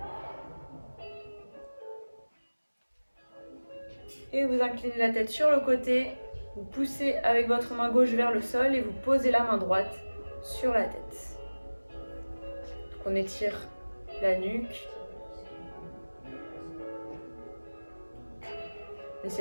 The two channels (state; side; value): inverted; both; correlation -1.00